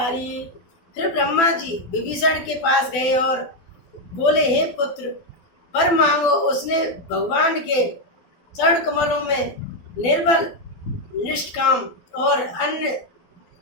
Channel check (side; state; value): right; late; 12 ms